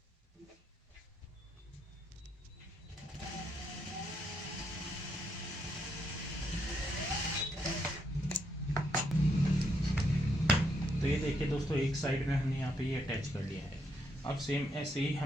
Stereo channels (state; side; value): normal; both; correlation 0.76